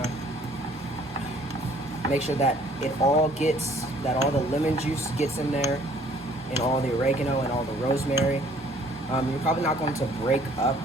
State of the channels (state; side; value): normal; both; correlation 0.58